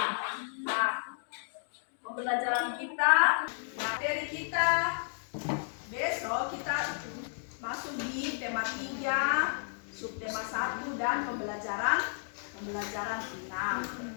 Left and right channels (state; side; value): silent; right; digital silence